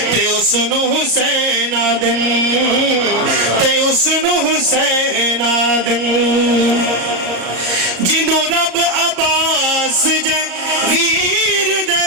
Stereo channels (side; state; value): left; late; 34 ms